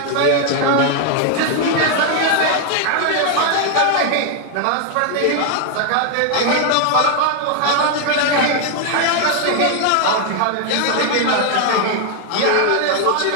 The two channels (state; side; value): different; both; correlation 0.00